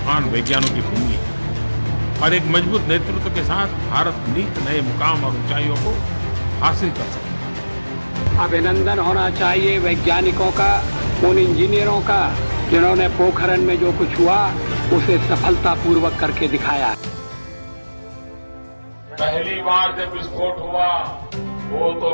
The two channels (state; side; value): inverted; both; correlation -1.00